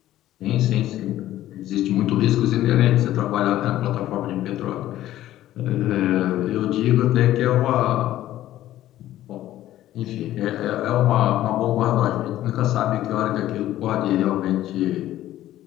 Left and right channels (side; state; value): right; quieter; 13.8 dB